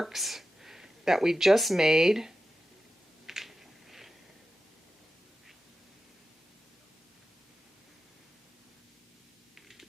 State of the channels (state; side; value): normal; both; correlation 0.92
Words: that we just made.